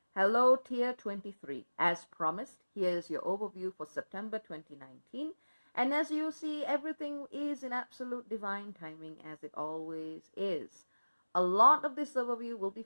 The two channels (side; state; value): both; inverted; correlation -1.00